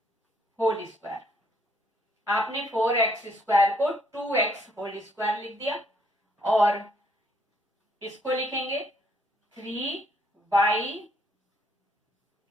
होल स्क्वायर। आपने 4x स्क्वायर को 2x होल स्क्वायर लिख दिया, और इसको लिखेंगे 3y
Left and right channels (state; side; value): normal; both; correlation 0.68